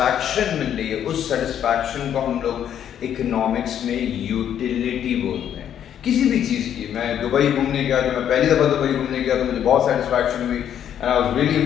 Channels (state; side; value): quieter; right; 9.7 dB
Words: मिल रही है, उस सेटिस्फैक्शन को हम लोग इकोनॉमिक्स में यूटिलिटी बोलते हैं. किसी भी चीज़ की, मैं दुबई घूमने गया, जो मैं पहली दफ़ा दुबई घूमने गया तो मुझे बहुत सेटिस्फैक्शन हुई and I was really